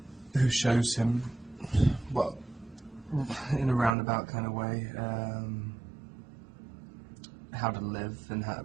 who shows him, well, in a roundabout kind of way, how to live and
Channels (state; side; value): drops out; left; at 4.0 s